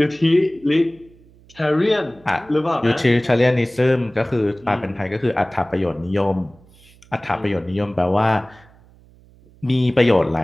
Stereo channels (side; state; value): right; noise; hum, 27 dB below the sound